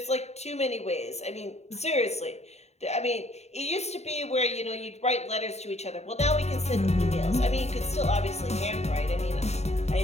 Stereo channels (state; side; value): late; right; 0.32 ms